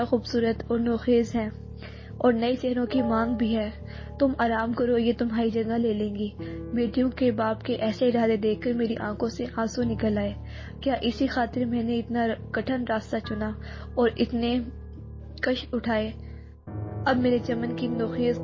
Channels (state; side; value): identical; both; correlation 1.00